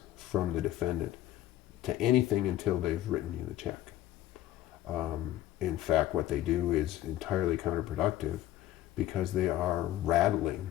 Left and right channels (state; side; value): quieter; right; 13.9 dB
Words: from the defendant to anything until they've written you the check. In fact, what they do is entirely counterproductive because they are